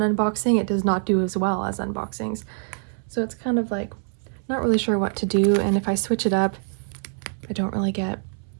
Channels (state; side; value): silent; left; 62 dB below the other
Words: unboxing, it does not do as well as unboxings. So it's kind of like not really sure what to do, and if I switch it up, I don't really get